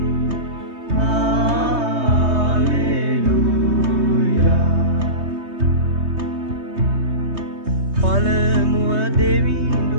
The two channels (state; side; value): late; left; 3.2 ms